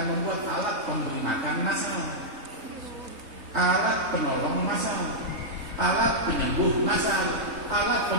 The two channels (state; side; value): late; left; 4.0 ms